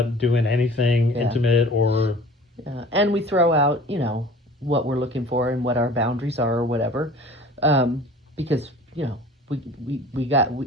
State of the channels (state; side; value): normal; both; correlation 0.45